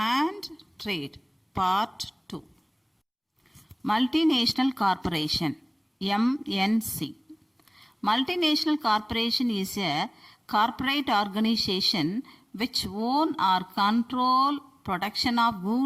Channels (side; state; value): both; identical; correlation 1.00